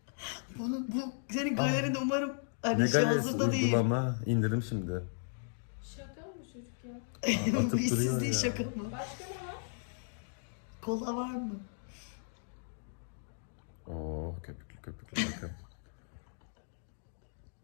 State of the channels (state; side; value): silent; right; digital silence